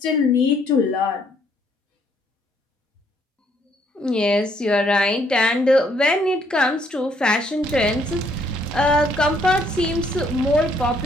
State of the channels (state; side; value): normal; both; correlation 0.68